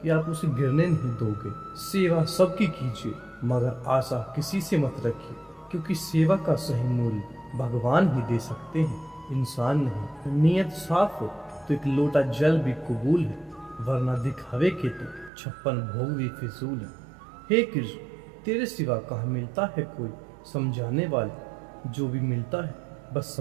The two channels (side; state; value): left; drops out; at 15.3 s